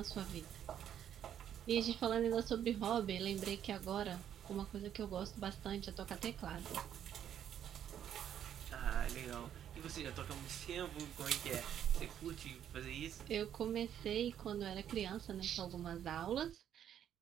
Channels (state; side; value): quieter; left; 9.8 dB